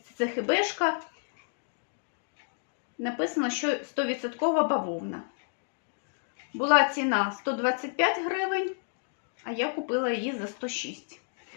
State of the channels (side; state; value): right; silent; digital silence